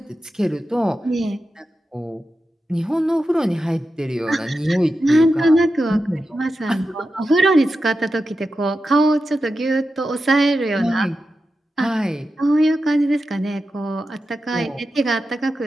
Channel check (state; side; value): normal; both; correlation 0.91